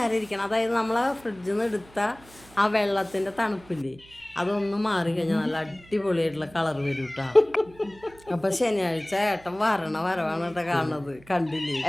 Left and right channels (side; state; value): right; noise; hum, 24 dB below the sound